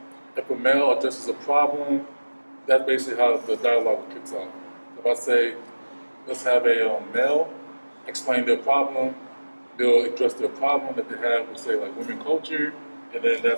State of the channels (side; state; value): both; inverted; correlation -1.00